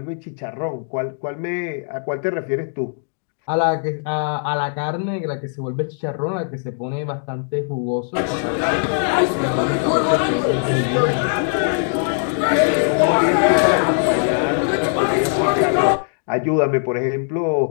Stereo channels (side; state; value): right; silent; digital silence